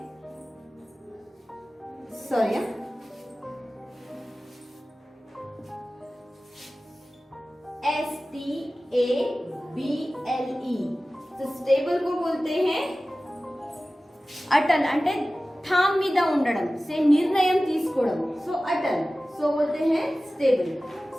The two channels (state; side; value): normal; both; correlation 0.96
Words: Sorry, STABLE। तो स्टेबल को बोलते हैं अटल। అంటే థామ్ మీద ఉండడం, से निर्णय తీసుకోవడం। सो अटल। सो बोलते हैं स्टेबल।